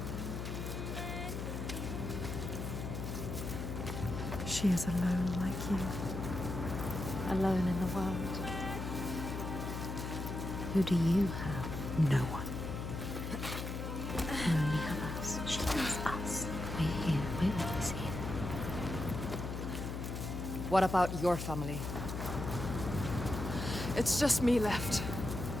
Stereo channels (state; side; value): noise; left; hum, 4 dB below the sound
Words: She is alone like you. Alone in the world. Who do you have? No one. You only have us. She has us. We're here. We're always here. What about your family? It's just me left.